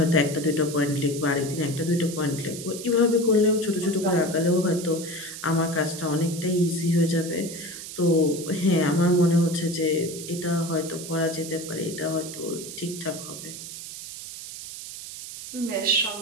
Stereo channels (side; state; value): right; noise; hiss, 11 dB below the sound